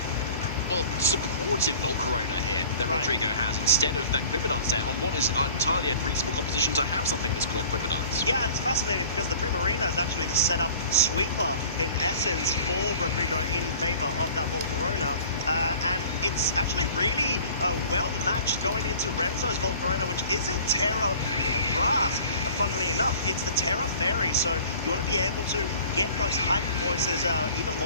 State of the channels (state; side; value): inverted; both; correlation -0.45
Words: well, supportive Volcarona here that Rodrigo has instead of that Quiver Dance there on what is entirely a reasonable competition to have something that's called Quiver Dance. Yeah, and it's fascinating because the Primarina is actually the setup sweeper in essence for Rodrigo in favor of that Volcarona. And it's actually really well matched going into Renzo's Volcarona, which isn't Terra Grass, funnily enough. It's the Terra Fairy, so you want to be able to get those hyper voices even